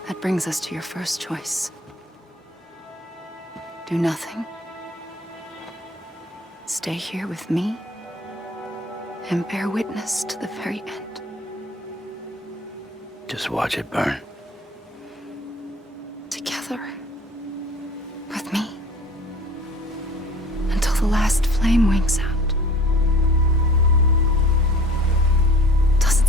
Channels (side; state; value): both; normal; correlation 0.48